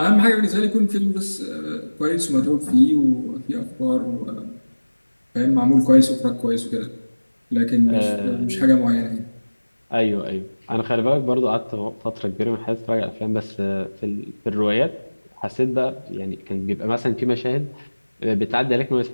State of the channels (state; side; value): inverted; both; correlation -1.00